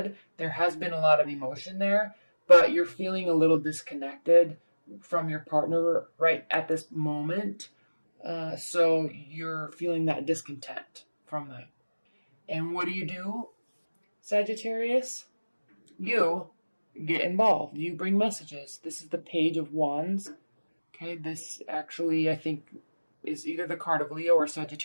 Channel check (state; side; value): inverted; both; correlation -1.00